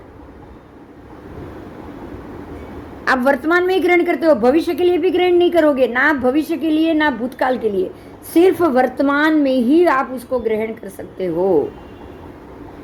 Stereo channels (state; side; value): identical; both; correlation 1.00